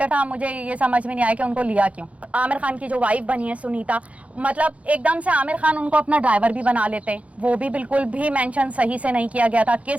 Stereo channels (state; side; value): late; left; 0.065 ms